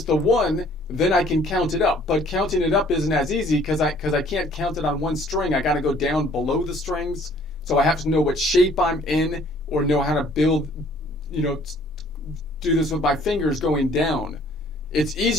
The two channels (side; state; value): both; normal; correlation 0.58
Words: the 1, then I can count it up. But counting it up isn't as easy because I can't count it on one string. I got to go down below the strings. So I have to know what shape I'm in, or know how to build, do this with my fingers going down. It's